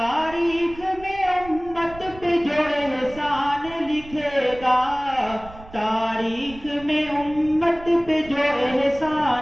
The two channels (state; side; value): noise; right; rumble, 18 dB below the sound